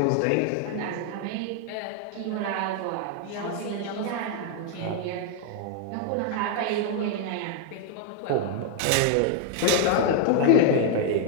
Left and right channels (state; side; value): different; both; correlation 0.00